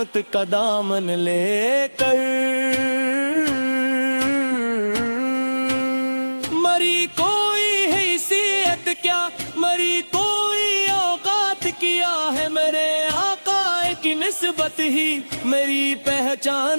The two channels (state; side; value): inverted; both; correlation -1.00